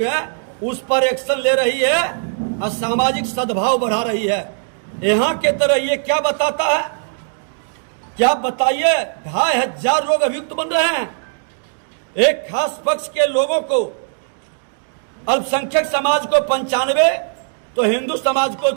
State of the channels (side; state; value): left; silent; digital silence